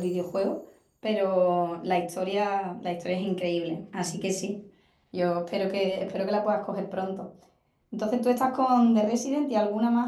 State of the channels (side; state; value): both; identical; correlation 1.00